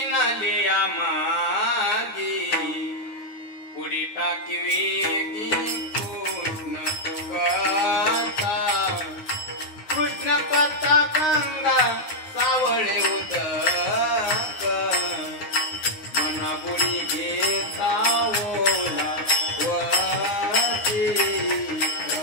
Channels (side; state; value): right; late; 9.7 ms